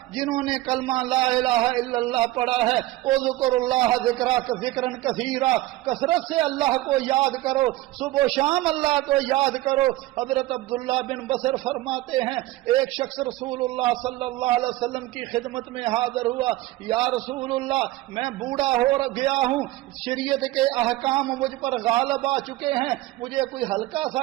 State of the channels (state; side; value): quieter; left; 17.4 dB